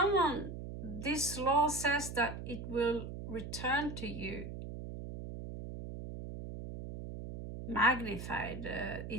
this law says that it will return to you magnified.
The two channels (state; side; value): noise; right; hum, 8 dB below the sound